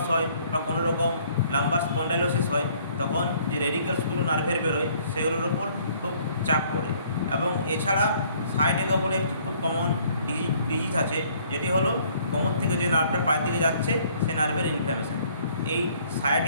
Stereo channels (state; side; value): inverted; both; correlation -0.61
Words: হয় বা কোনো রকম লাম্বার স্পন্ডাইলোসিস হয়, তখন যে রেডিকেলসগুলো নার্ভের বেরোয় সেগুলোর ওপর খুব চাপ পড়ে। এবং এছাড়া সায়াটিকা বলে একটি খুব কমন ডিজিজ আছে, যেটি হলো কোমর থেকে যে নার্ভটা পায়ের দিকে যাচ্ছে সে নার্ভের ইনফ্ল্যামেশন। এই